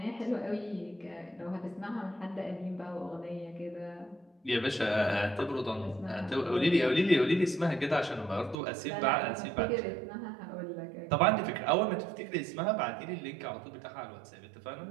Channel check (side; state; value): left; drops out; at 8.6 s